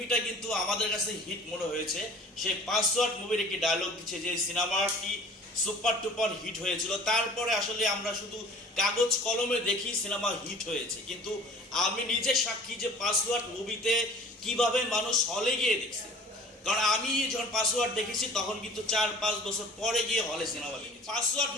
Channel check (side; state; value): both; normal; correlation 0.47